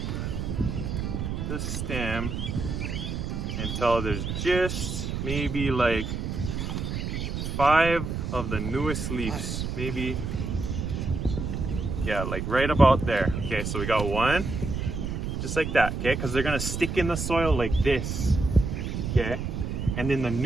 the stem until there's just maybe like 5 of the newest leaves, maybe, yeah, like right about there. Okay, so we got 1 just like that, okay, because they're gonna stick in the soil like this, okay, and then the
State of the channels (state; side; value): noise; right; rumble, 3 dB below the sound